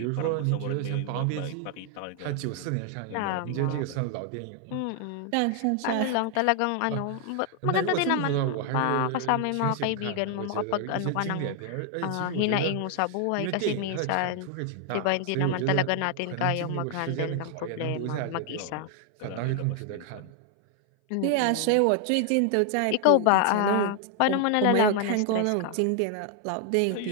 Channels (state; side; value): different; both; correlation 0.00